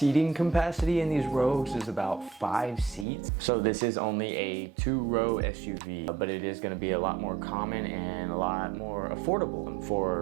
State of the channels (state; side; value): drops out; left; at 3.1 s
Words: capacity in these Rogues is about 5 seats. So this is only a 2-row SUV, but it is going to be a lot more common and a lot more affordable